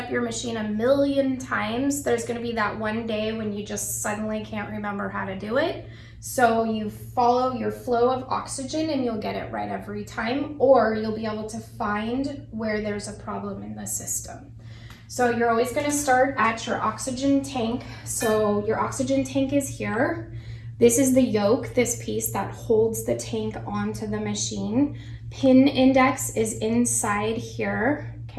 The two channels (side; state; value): both; identical; correlation 1.00